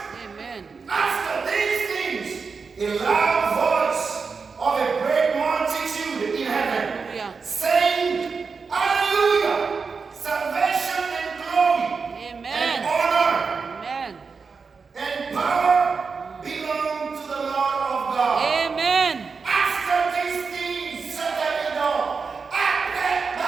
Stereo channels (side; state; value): left; quieter; 5.1 dB